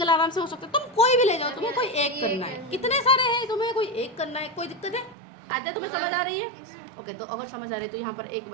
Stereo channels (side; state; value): left; drops out; at 5.2 s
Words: आराम से हो सकता है। तुम कोई भी ले जाओ, तुम्हें कोई एक करना है, कितने सारे हैं, तुम्हें कोई एक करना है, कोई दिक्कत है? आजा तुम्हें समझ आ रही है? ओके, तो अगर समझ आ रही है तो यहाँ पर एक